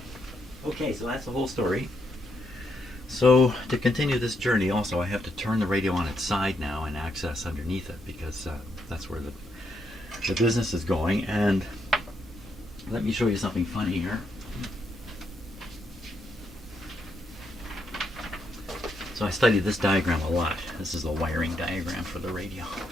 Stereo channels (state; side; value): normal; both; correlation 0.78